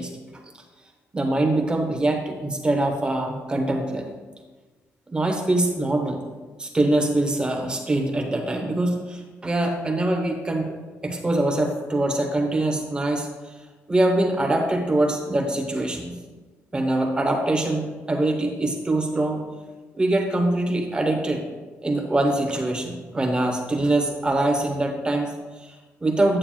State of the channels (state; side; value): normal; both; correlation 0.85